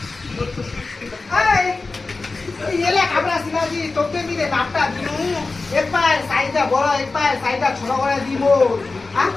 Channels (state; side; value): quieter; right; 3.7 dB